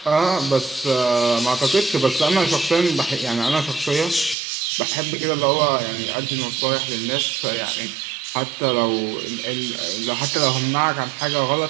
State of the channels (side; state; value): left; drops out; at 4.4 s